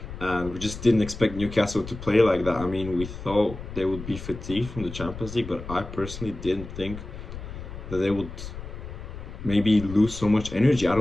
and we just didn't expect Newcastle to play like that. I mean, we thought they would be fatigued from the Champions League, but I personally didn't think that they would maybe lose so much energy. I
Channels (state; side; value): noise; left; rumble, 11 dB below the sound